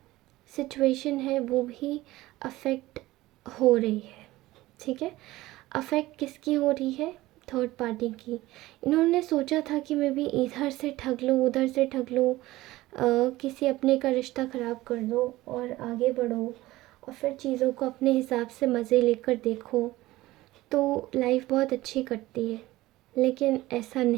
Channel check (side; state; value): left; quieter; 17.8 dB